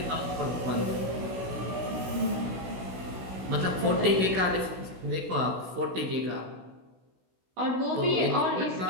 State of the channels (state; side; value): late; left; 16 ms